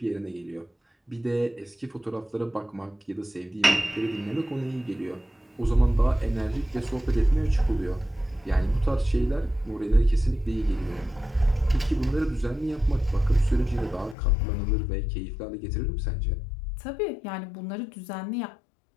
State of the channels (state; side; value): drops out; right; at 14.2 s